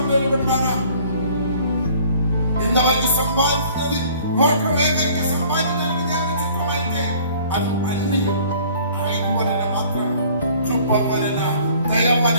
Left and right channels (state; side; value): inverted; both; correlation -0.53